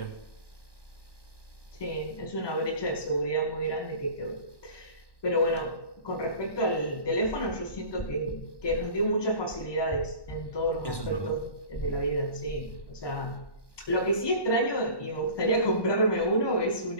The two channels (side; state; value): right; late; 1.1 ms